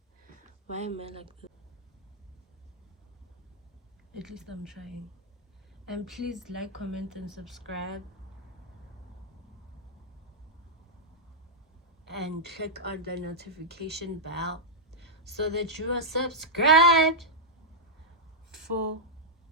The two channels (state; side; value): normal; both; correlation -0.07